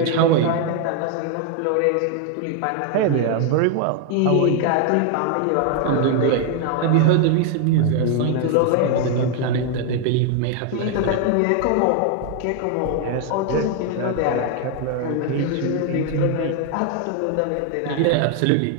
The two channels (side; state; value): both; different; correlation 0.01